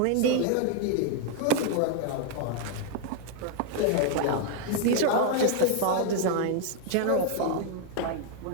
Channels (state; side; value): different; both; correlation 0.00